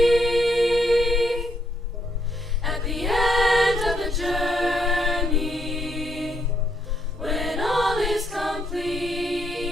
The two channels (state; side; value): normal; both; correlation 0.75